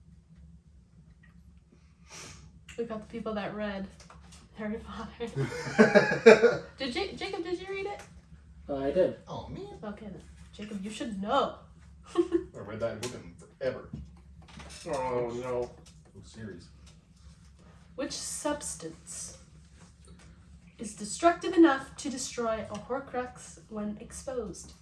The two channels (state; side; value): identical; both; correlation 1.00